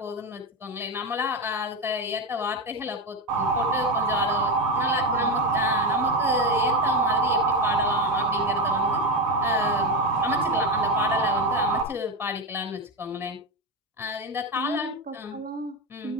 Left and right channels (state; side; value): normal; both; correlation 0.14